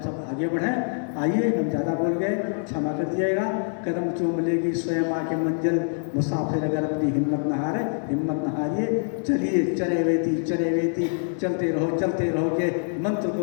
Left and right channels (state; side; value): silent; right; 62 dB below the other